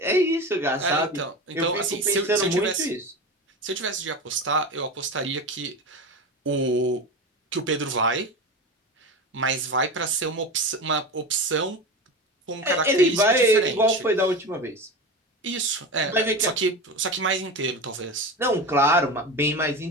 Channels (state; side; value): normal; both; correlation 0.26